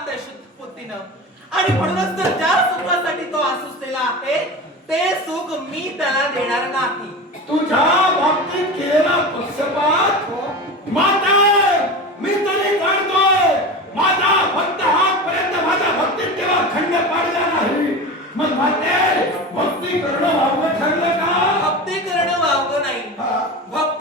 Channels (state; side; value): normal; both; correlation 0.28